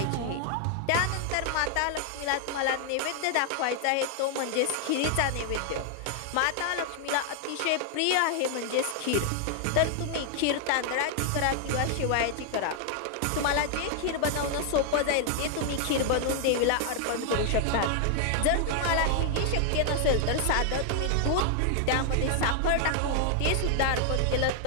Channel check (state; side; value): different; both; correlation 0.00